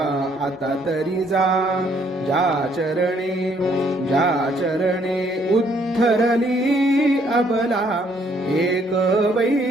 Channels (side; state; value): both; normal; correlation 0.67